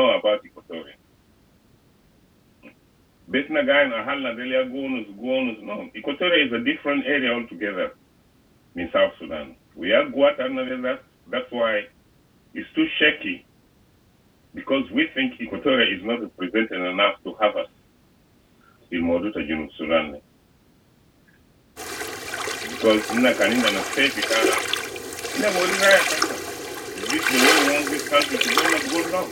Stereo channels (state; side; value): identical; both; correlation 1.00